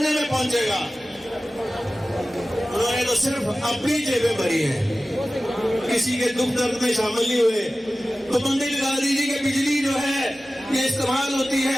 में पहुंचेगा। उन्होंने तो सिर्फ अपनी जेबें भरी हैं, किसी के दुख दर्द में शामिल नहीं हुए। तो बंदी लगा दीजिए कि बिजली जो है ये इस्तेमाल होती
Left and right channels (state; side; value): normal; both; correlation 0.96